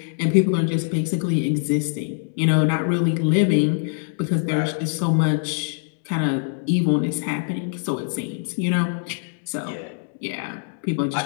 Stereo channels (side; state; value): right; silent; digital silence